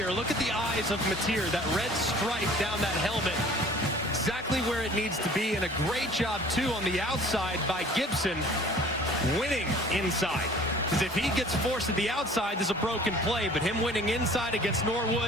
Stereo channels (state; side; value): normal; both; correlation 0.49